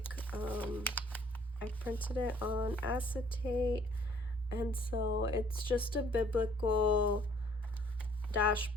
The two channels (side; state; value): both; normal; correlation 0.59